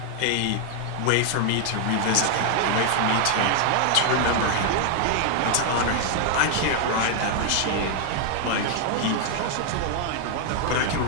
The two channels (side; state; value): both; different; correlation 0.00